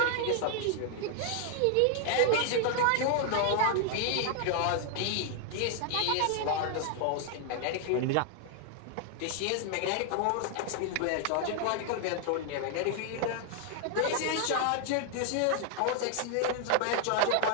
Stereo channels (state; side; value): different; both; correlation 0.00